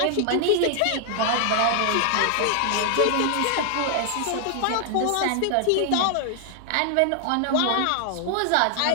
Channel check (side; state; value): both; different; correlation 0.00